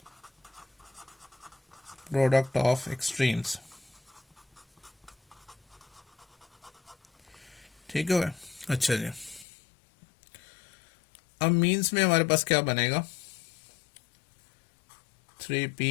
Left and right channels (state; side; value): drops out; right; at 9.5 s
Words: product of extremes, ठीक है। अच्छा जी, अब मीन्स में हमारे पास क्या बनेगा,